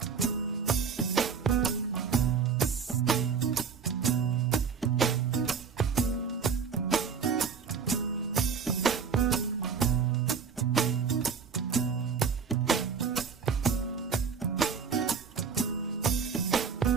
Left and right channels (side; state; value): left; quieter; 6.3 dB